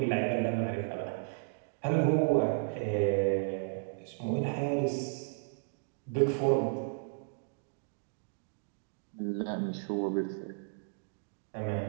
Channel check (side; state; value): left; silent; digital silence